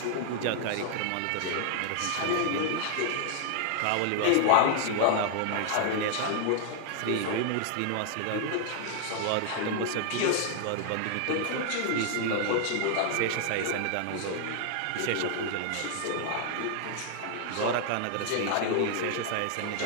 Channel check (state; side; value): different; both; correlation 0.00